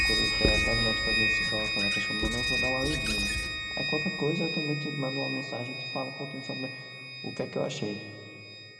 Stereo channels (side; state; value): both; identical; correlation 1.00